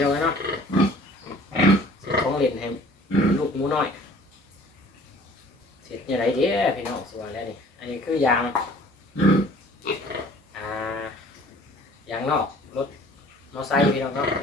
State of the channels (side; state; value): both; normal; correlation 0.51